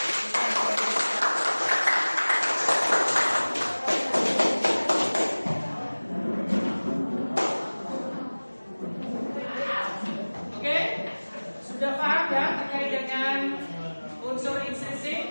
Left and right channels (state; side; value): inverted; both; correlation -1.00